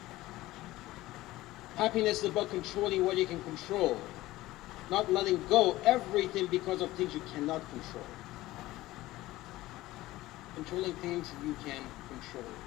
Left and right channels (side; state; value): right; quieter; 17.4 dB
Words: Happiness is about controlling what you can control. Not letting go everything because of things you cannot control. Controlling things you can control.